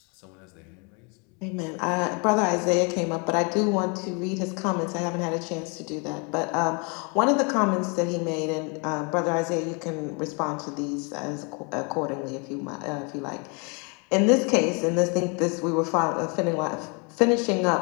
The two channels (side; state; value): right; quieter; 33.5 dB